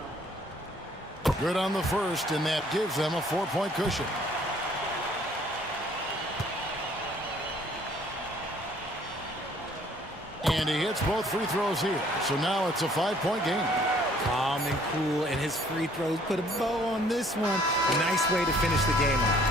Good on the first, and that gives them a 4-point cushion. And he hits both free throws here. So now it's a 5-point game. Calm and cool, and his free throws put a bow on this one. A nice way to finish the game off.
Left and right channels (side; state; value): both; normal; correlation 0.59